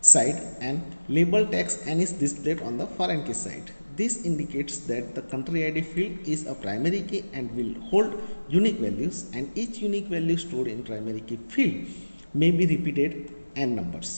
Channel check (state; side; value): inverted; both; correlation -1.00